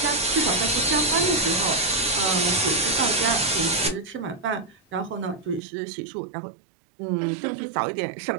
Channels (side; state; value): left; drops out; at 5.6 s